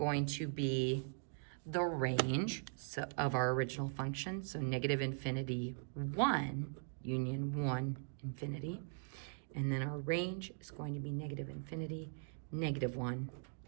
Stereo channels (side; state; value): left; silent; digital silence